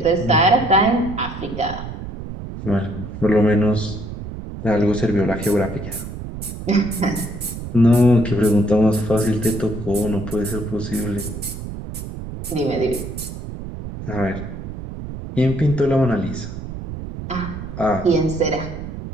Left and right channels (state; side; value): noise; right; rumble, 9 dB below the sound